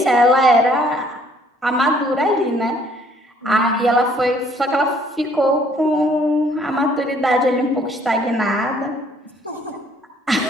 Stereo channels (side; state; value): both; normal; correlation 0.62